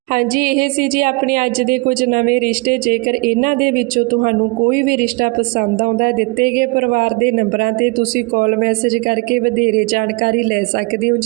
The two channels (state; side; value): quieter; left; 27.2 dB